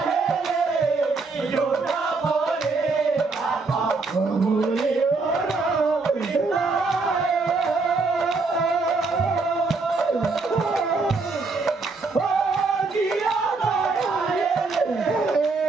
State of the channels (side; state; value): left; quieter; 4.0 dB